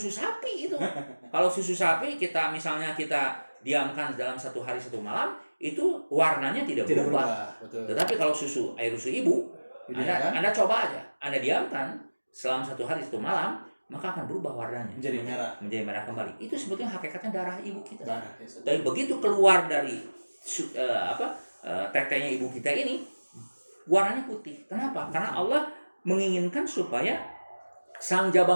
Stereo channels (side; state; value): both; inverted; correlation -1.00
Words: sapi itu. Kalau susu sapi kita misalnya kita diamkan dalam 1 hari 1 malam, itu warnanya tidak berubah. Betul. Tetapi kalau air susu ibu, Anda coba aja, Anda diamkan selama 1 hari 1 malam, maka akan berubah warnanya. Menjadi merah kembali. Itu sebetulnya hakikatnya darah ibu kita. Darah. Tapi begitu keluar dari tetenya ibu kita ini, warnanya putih. Kenapa? Karena Allah menginginkan supaya sang